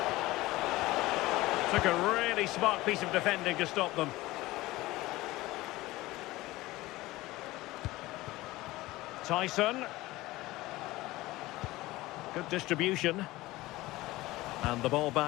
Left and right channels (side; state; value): right; quieter; 18.7 dB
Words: Took a really smart piece of defending to stop them. Tyson. Good distribution. And the ball